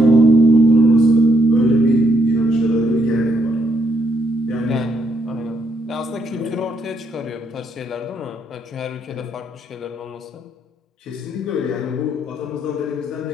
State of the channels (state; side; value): normal; both; correlation 0.74